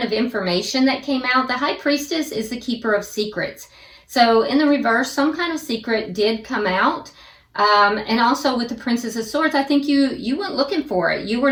of information that came out. The High Priestess is the keeper of secrets. So in the reverse, some kind of secret did come out. And also with the Princess of Swords, I think you went looking for it. You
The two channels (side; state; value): both; identical; correlation 1.00